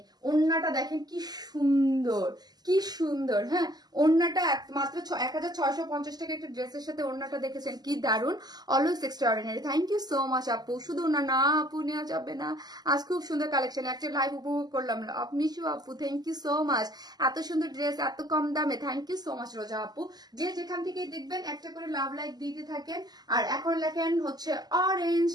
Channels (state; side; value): late; left; 0.20 ms